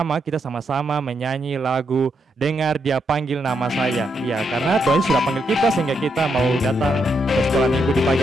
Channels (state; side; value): normal; both; correlation 0.80